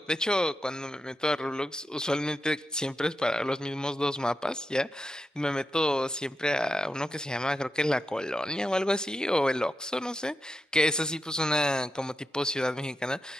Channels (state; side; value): normal; both; correlation 0.88